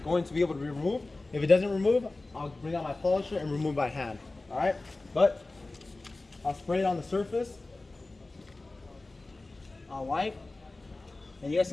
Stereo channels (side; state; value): right; quieter; 3.2 dB